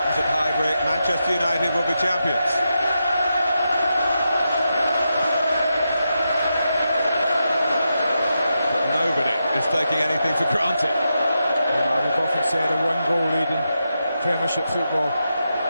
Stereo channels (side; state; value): both; inverted; correlation -0.86